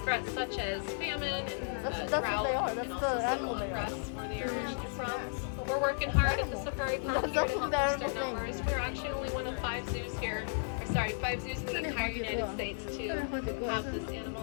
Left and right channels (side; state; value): right; silent; digital silence